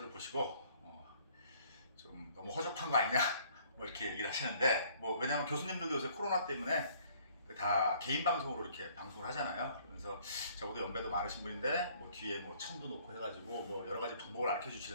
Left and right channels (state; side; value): inverted; both; correlation -0.59